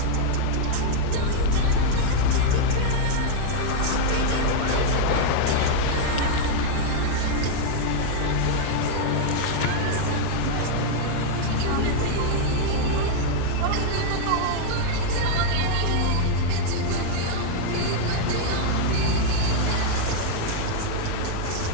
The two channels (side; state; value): both; different; correlation 0.00